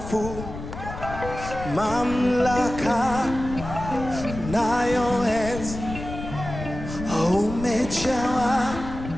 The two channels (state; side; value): noise; left; rumble, 9 dB below the sound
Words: mamlaka nayo enzi. Umejawa